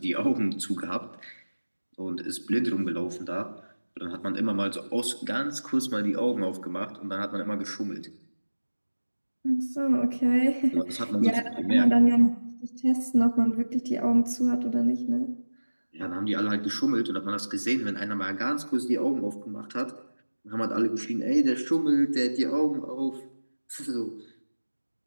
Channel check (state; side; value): inverted; both; correlation -1.00